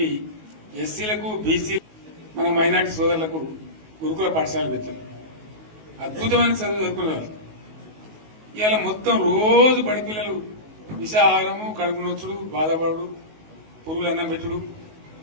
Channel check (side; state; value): left; late; 19 ms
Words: ఎస్సీలకు, బీసీ, మన మైనార్టీ సోదరులకు గురుకుల పాఠశాలలు పెట్టారు. అద్భుతమైన చదువు చదువుకునే వాళ్ళు ఇవాళ మొత్తం రోజు బడి పిల్లలు విషాహారము, కడుపు నొచ్చుడు, బాధపడు, పురుగులు అన్నం పెట్టుడు,